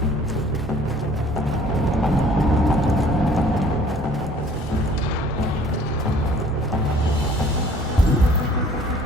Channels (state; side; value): normal; both; correlation 0.54